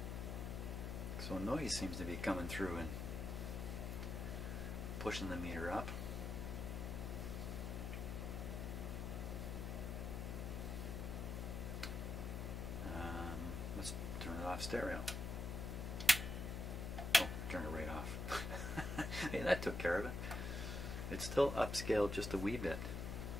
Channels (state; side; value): noise; left; hum, 3 dB below the sound